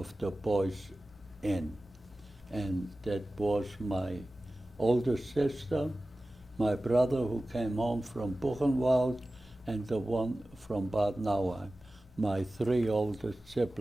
the boys in. And that was my older sister, my brother who came home from Buchenwald, and the one from Bad Nauheim, my 3 oldest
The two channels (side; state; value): left; noise; hum, 26 dB below the sound